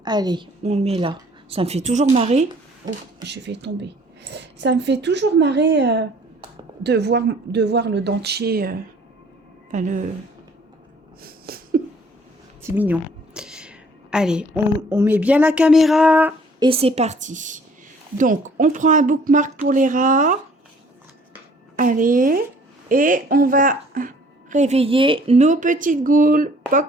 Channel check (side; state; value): both; normal; correlation 0.56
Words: Allez, on le met là. Ça me fait toujours marrer. Oh, je vais tomber. Ça me fait toujours marrer de voir le dentier. Enfin, le... C'est mignon. Allez, on met bien la caméra et c'est parti. Donc, on prend un bookmark pour les rats. Allez, et on va réveiller nos petites goules.